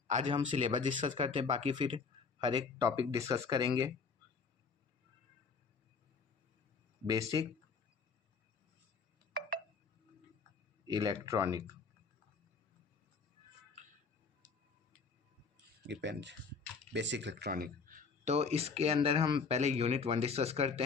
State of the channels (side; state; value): right; quieter; 5.1 dB